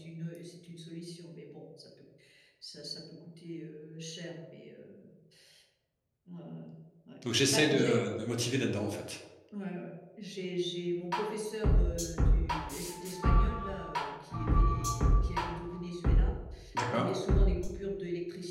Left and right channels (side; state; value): both; identical; correlation 1.00